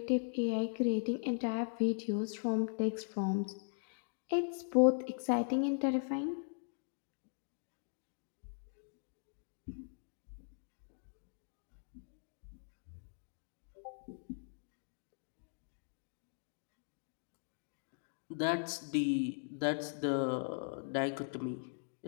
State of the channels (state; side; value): silent; right; digital silence